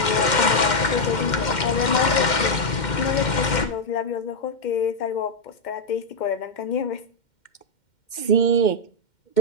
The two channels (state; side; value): late; right; 2.1 ms